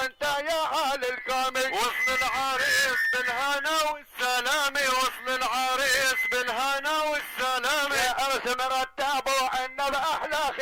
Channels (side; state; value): both; identical; correlation 1.00